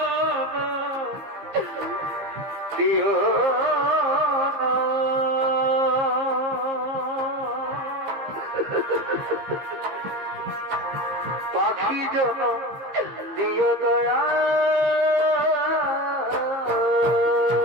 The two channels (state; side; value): late; left; 15 ms